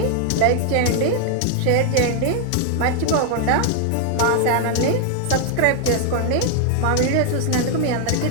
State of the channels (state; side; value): different; both; correlation 0.00